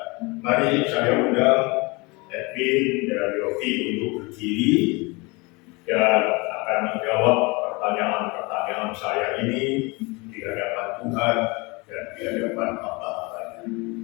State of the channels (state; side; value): quieter; right; 26.5 dB